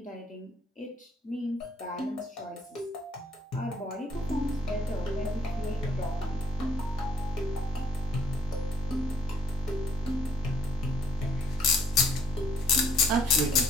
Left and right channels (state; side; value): normal; both; correlation 0.65